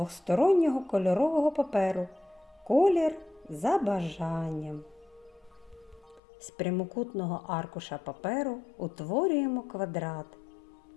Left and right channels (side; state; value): right; drops out; at 6.2 s